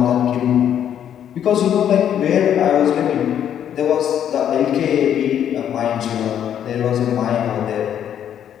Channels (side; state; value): right; quieter; 9.7 dB